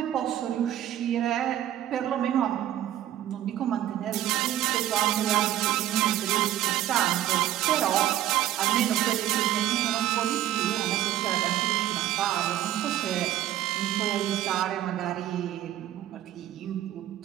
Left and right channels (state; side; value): quieter; left; 12.7 dB